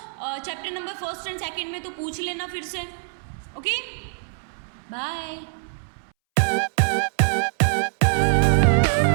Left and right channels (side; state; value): left; silent; 63 dB below the other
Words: chapter number first and second में तो पूछ लेना फिर से। Okay, bye.